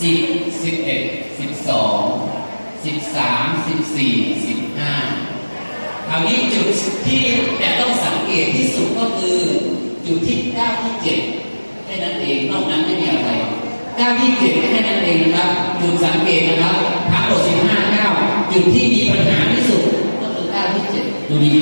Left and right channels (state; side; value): inverted; both; correlation -1.00